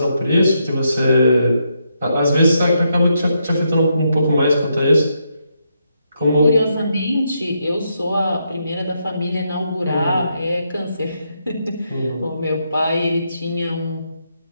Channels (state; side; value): inverted; both; correlation -0.80